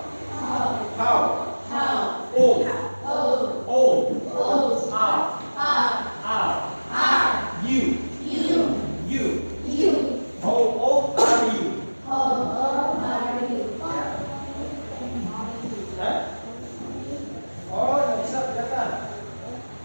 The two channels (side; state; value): both; inverted; correlation -1.00